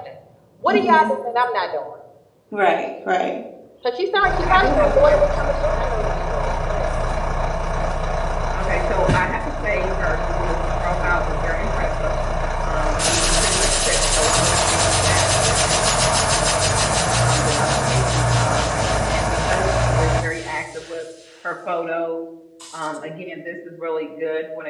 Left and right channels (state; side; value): identical; both; correlation 1.00